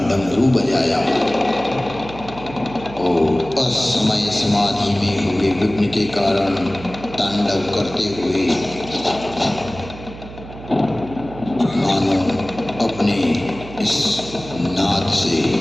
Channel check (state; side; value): noise; right; hum, 14 dB below the sound